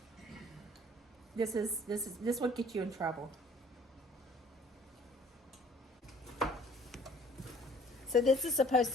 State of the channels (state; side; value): normal; both; correlation 0.54